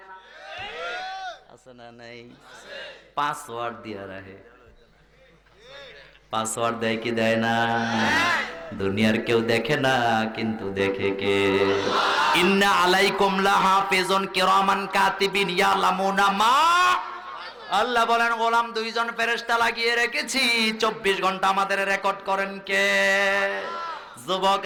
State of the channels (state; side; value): identical; both; correlation 1.00